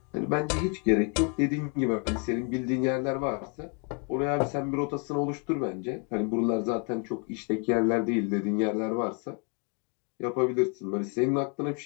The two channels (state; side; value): quieter; right; 35.8 dB